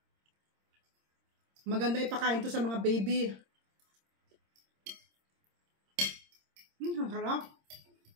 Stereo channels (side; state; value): left; late; 26 ms